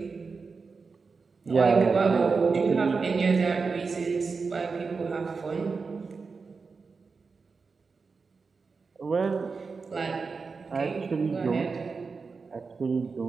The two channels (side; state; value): left; quieter; 4.7 dB